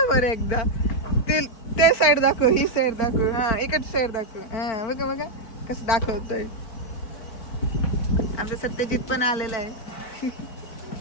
बरं एकदा. ते साईड दाखव, ही साईड दाखव. हा इकडची साईड दाखव. हा बघा बघा कसं दाखवतोय. आमचा सत्यजित पण आलेला आहे.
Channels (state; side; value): late; right; 4.4 ms